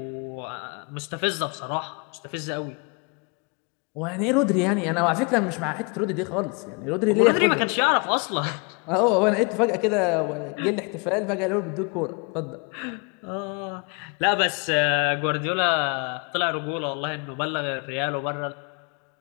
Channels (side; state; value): right; quieter; 33.1 dB